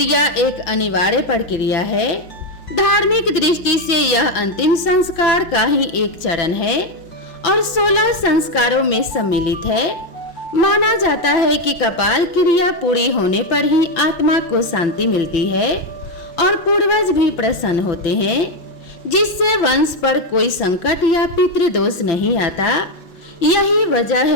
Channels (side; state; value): right; late; 5.6 ms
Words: एक अनिवार्य प्रक्रिया है। धार्मिक दृष्टि से यह अंतिम संस्कार का ही एक चरण है और 16 संस्कारों में सम्मिलित है। माना जाता है कि कपाल क्रिया पूरी होने पर ही आत्मा को शांति मिलती है और पूर्वज भी प्रसन्न होते हैं, जिससे वंश पर कोई संकट या पितृदोष नहीं आता। यही वजह